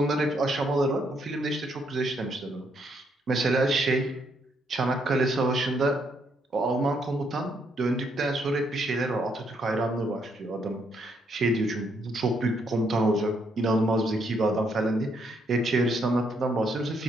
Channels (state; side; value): normal; both; correlation 0.73